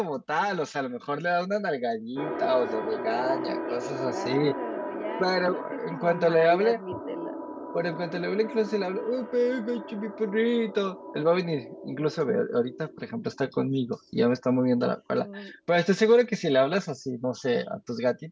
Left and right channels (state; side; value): identical; both; correlation 1.00